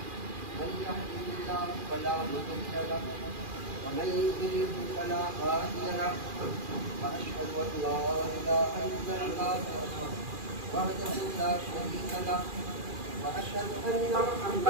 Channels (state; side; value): late; left; 2.4 ms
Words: من يهده الله فلا مضل له ومن يضلل فلا هادي له واشهد ان لا اله الا الله وحده لا شريك له واشهد ان